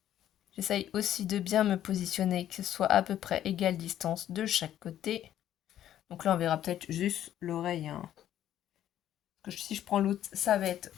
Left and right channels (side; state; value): right; quieter; 11.5 dB